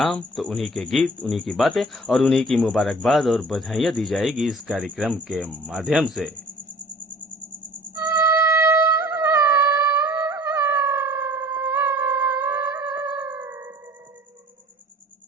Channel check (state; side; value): normal; both; correlation 0.48